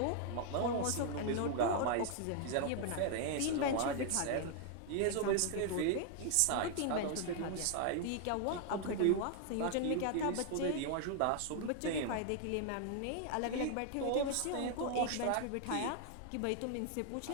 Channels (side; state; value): both; different; correlation 0.00